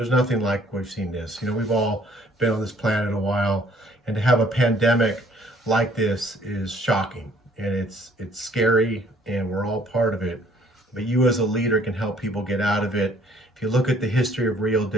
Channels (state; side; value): normal; both; correlation 0.60